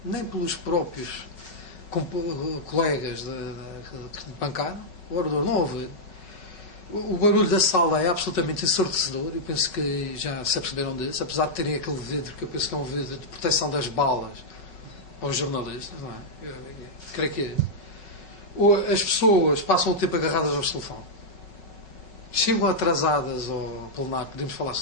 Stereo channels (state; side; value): late; right; 5.4 ms